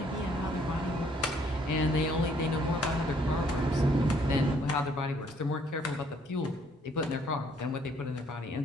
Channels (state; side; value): normal; both; correlation 0.65